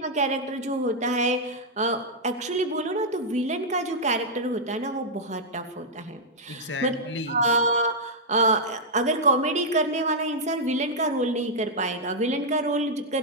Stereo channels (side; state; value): both; normal; correlation -0.06